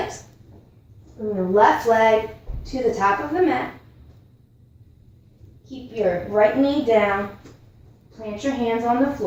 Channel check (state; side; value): identical; both; correlation 1.00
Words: Bring your left leg to the top of the mat. Keep your right knee down. Plant your hands on the